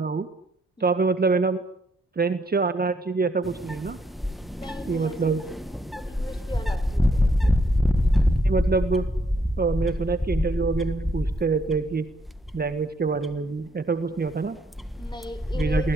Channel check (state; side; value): normal; both; correlation 0.71